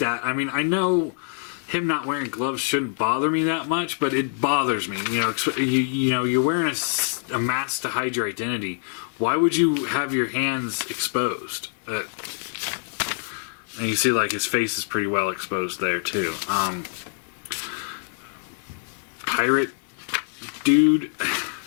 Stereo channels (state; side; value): silent; right; digital silence